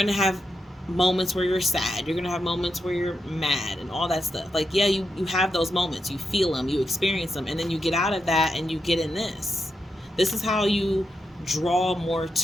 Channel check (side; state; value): both; normal; correlation 0.86